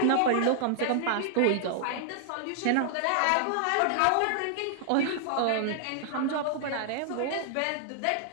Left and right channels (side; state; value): both; different; correlation -0.01